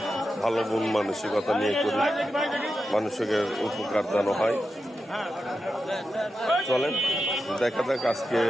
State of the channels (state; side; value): normal; both; correlation 0.90